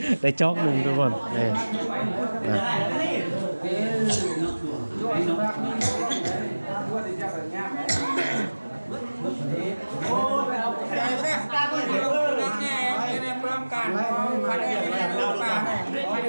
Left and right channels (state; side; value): inverted; both; correlation -1.00